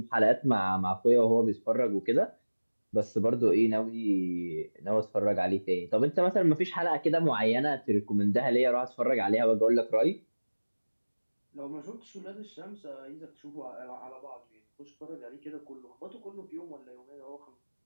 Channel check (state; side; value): inverted; both; correlation -1.00